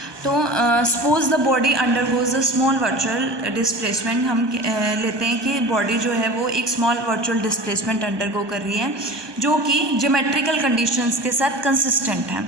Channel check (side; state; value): left; late; 1.2 ms